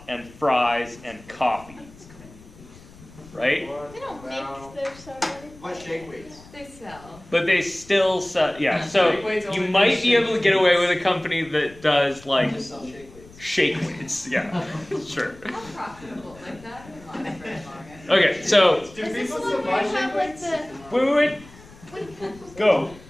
and fries and coffee. Right? They don't make their stuff. What shake weights? They sell. But they still sell, yeah. So you might be able to get away with a company that does Just sell shake weights. shake weights. Yeah, sure. How profitable like that? Okay, so Is this the one where you have the... wait. Go.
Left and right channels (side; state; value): left; noise; rumble, 21 dB below the sound